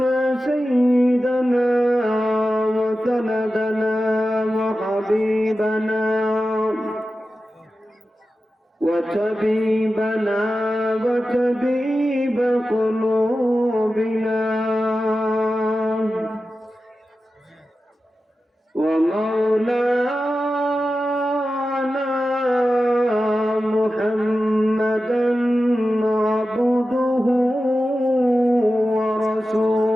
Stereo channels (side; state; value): both; normal; correlation 0.93